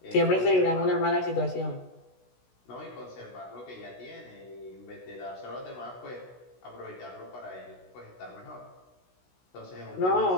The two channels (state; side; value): late; right; 16 ms